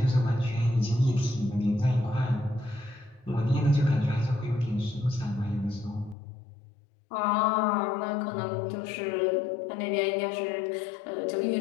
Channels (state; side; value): drops out; right; at 6.2 s